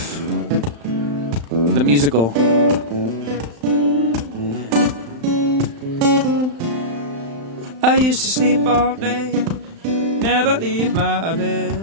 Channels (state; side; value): late; left; 35 ms